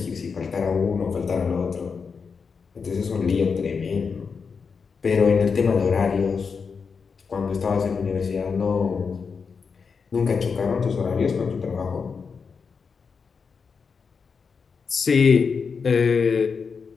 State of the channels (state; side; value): quieter; right; 5.5 dB